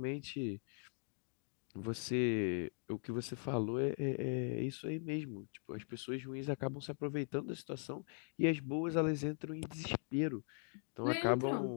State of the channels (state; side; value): silent; right; 51 dB below the other